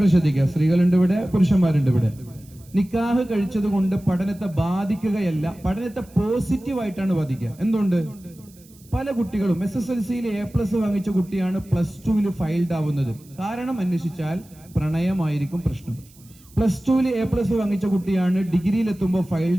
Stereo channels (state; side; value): noise; right; hiss, 26 dB below the sound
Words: ശ്രദ്ധിക്കുക, സ്ത്രീകളുണ്ട് ഇവിടെ, പുരുഷന്മാരുണ്ട് ഇവിടെ. നിക്കാഹ് കഴിച്ചത് കൊണ്ട് പഠനത്തെ ബാധിക്കുകയല്ല, പഠനത്തെ പോസിറ്റീവായിട്ടാണ് ബാധിക്കുക. എന്തുകൊണ്ട്? പല കുട്ടികളും SSLCയിൽ A+ വാങ്ങിച്ച കുട്ടിയാണ് +2ൽ ഫെയിൽഡ് ആവുന്നത്. കാരണം അന്വേഷിച്ചാൽ പ്രണയമായിരിക്കും പ്രശ്നം. +2ൽ A+ വാങ്ങിച്ച കുട്ടിയാണ് ഡിഗ്രിയിൽ എത്തുമ്പോൾ